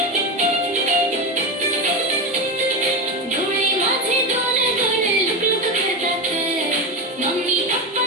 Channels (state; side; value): normal; both; correlation 0.17